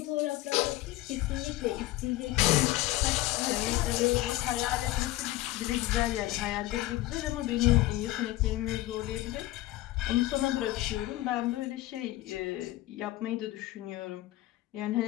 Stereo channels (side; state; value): right; quieter; 17.1 dB